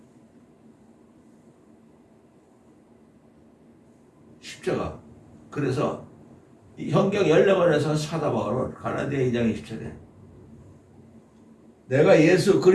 십자가. 그래서 이 현경 14번에서 사도 바울은 갈라디아 2장 20절에 내가 예수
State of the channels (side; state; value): both; identical; correlation 1.00